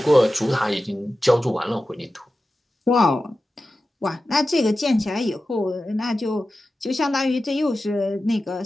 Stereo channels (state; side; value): normal; both; correlation 0.94